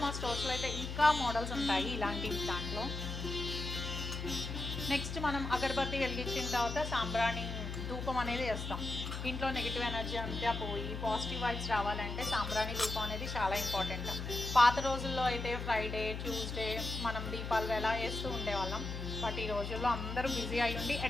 మా స్టోర్స్లో అయితే ఇంకా మోడల్స్ ఉంటాయి ఇలాంటివి దాంట్లో. నెక్స్ట్ మనం అగరబత్తి వెలిగించిన తర్వాత సాంబ్రాణి ధూపం అనేది వేస్తాం. ఇంట్లో నెగిటివ్ ఎనర్జీ అంతా పోయి పాజిటివ్ వైబ్స్ రావాలంటే సాంబ్రాణి ధూపం అనేది చాలా ఇంపార్టెంట్. పాత రోజుల్లో అయితే ఫ్రైడే ట్యూస్డే మనం దీపాలు వేళ వేస్తూ ఉండేవాళ్ళం. బట్ ఈ రోజుల్లో అందరూ బిజీ అయి ఉండి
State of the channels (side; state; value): left; noise; hum, 5 dB below the sound